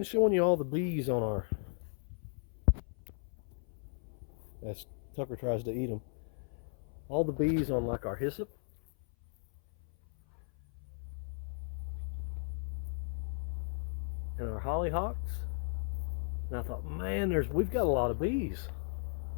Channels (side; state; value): right; silent; 54 dB below the other